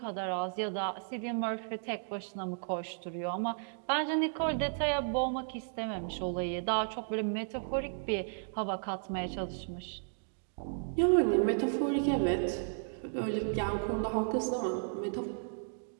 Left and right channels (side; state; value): left; silent; digital silence